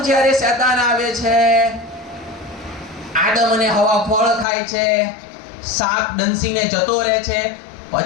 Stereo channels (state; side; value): drops out; right; at 4.5 s